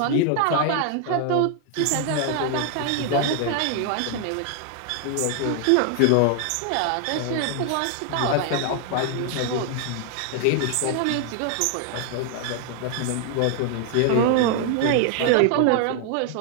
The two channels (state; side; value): different; both; correlation 0.00